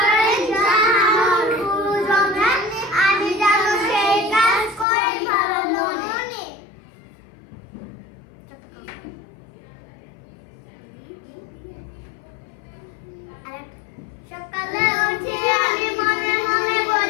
জানানোর গুরুজনে আমি যেন সেই কাজ করি ভালো মনে। সকালে উঠে আমি মনে মনে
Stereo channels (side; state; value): right; drops out; at 4.9 s